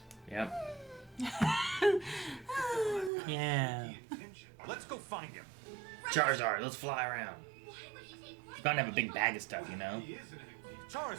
Yep. Yeah. Let's go find him. Charizard, let's fly around. Why would he take He's bound to have a big bag of stuff, you know? He is an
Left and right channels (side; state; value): left; drops out; at 3.1 s